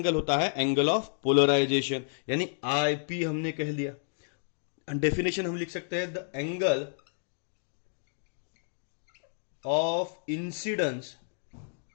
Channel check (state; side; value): silent; right; digital silence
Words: होता है एंगल ऑफ पोलराइजेशन। यानी आईपी हमने कह दिया। डेफिनेशन हम लिख सकते हैं, the angle of incidence